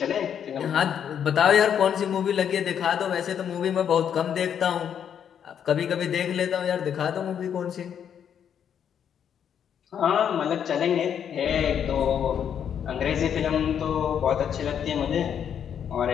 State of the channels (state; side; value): quieter; right; 8.5 dB